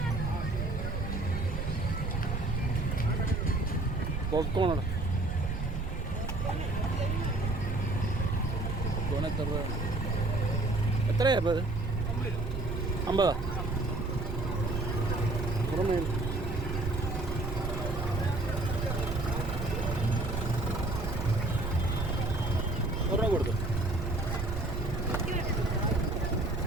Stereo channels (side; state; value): right; noise; rumble, 3 dB below the sound